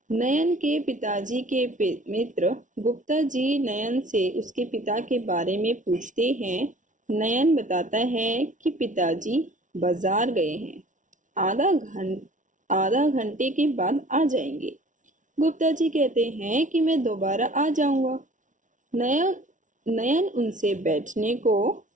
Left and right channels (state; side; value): late; left; 0.37 ms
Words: नयन के पिताजी के मित्र गुप्ता जी नयन से उसके पिता के बारे में पूछते हैं। नयन बताता है कि पिताजी बाजार गए हैं, आधा घंटे के बाद आ जाएंगे। गुप्ता जी कहते हैं कि मैं दोबारा आ जाऊंगा। नयन नयन उनसे बैठने को